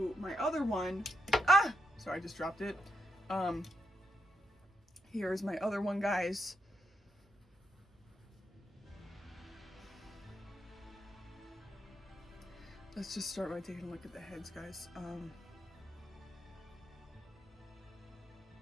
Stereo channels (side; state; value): both; normal; correlation 0.82